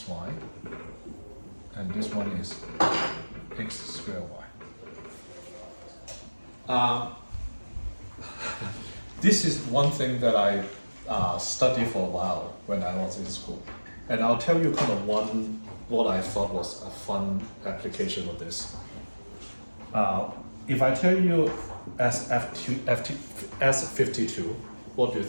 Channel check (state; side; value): inverted; both; correlation -1.00